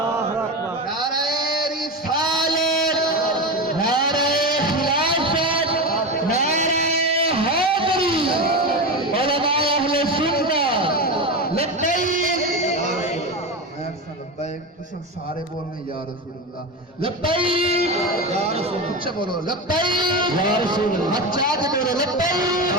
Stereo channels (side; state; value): both; normal; correlation 0.20